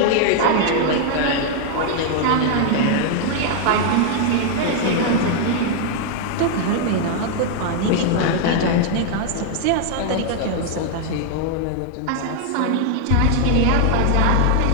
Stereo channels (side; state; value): both; different; correlation 0.00